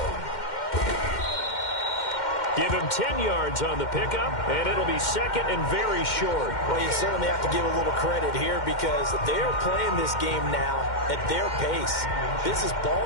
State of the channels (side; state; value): right; late; 2.1 ms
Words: Give him 10 yards on the pickup, and it'll be 2nd and very short. Well, you certainly have to give a little credit here because they're playing this game now at their pace. This is